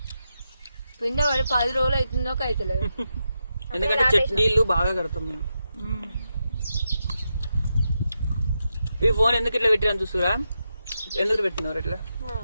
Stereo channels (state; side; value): inverted; both; correlation -0.86